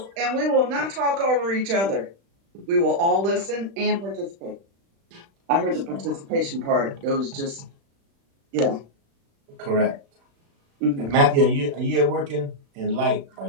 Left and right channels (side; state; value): left; late; 36 ms